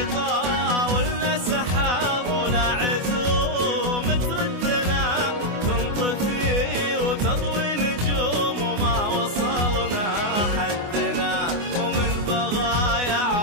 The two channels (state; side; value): late; left; 24 ms